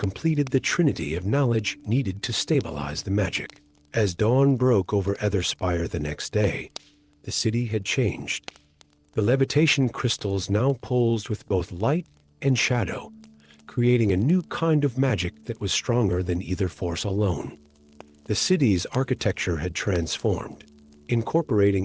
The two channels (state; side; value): identical; both; correlation 1.00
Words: the trinity of knowledge needed to stabilize the magic. As dawn broke over Etherspire the next day, the city had changed. The levitation crystals now pulsed with both light and shadow, creating a new kind of magic that was stronger than either force alone. The city's architecture had transformed,